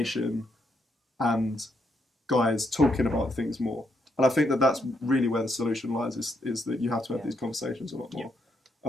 and guys talking about things more. And I think that that's really where the solution lies, is that you have to have these conversations a lot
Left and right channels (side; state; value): both; normal; correlation 0.77